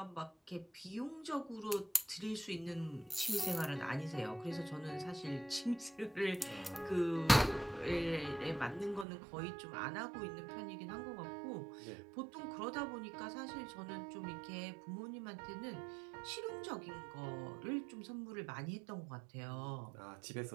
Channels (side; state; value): left; drops out; at 9.1 s